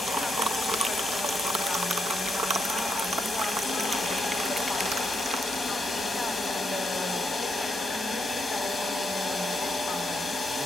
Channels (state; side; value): normal; both; correlation 0.79